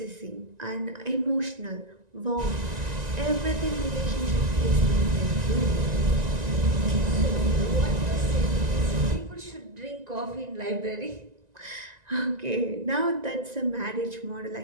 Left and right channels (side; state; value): left; late; 1.9 ms